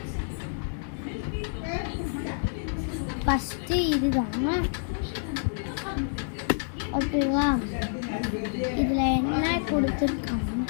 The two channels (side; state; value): right; silent; digital silence